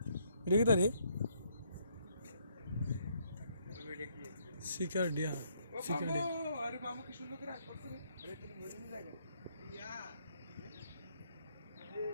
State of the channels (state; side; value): inverted; both; correlation -0.70